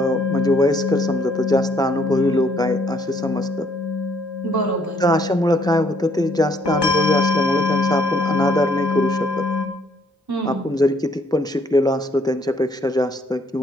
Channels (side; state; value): both; normal; correlation 0.66